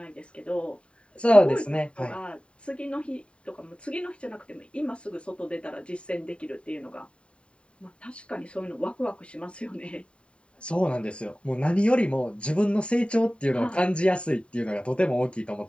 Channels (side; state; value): right; late; 0.057 ms